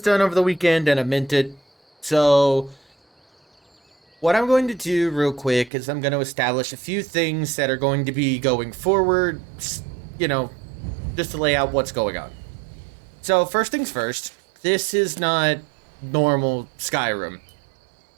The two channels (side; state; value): left; drops out; at 5.7 s